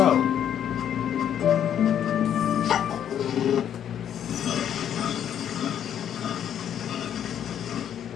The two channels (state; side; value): quieter; right; 9.6 dB